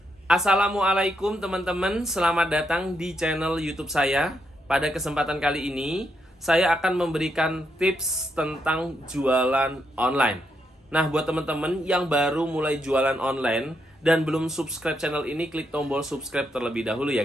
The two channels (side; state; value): both; normal; correlation 0.79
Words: Assalamualaikum teman-teman, selamat datang di channel YouTube saya. Pada kesempatan kali ini, saya akan memberikan tips tentang jualan online. Nah, buat teman-teman yang baru mulai jualan online dan belum subscribe channel ini, klik tombol subscribe terlebih dahulu